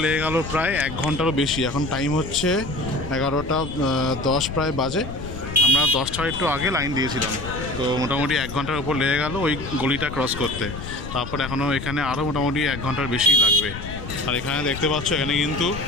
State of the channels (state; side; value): noise; left; rumble, 9 dB below the sound